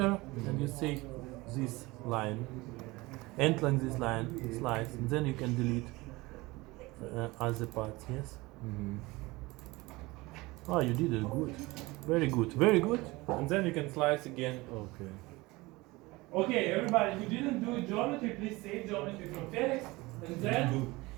and you say this line, end like this line, slice, and then you can delete other parts, yes? Oh, you did it good. Very good, very good. And then you can slice again. Okay. Okay, everybody who didn't do geometry, please save geometry from Felix, and then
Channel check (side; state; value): left; quieter; 22.0 dB